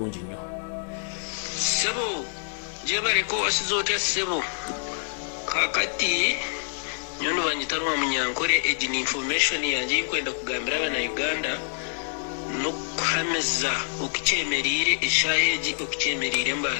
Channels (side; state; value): right; silent; digital silence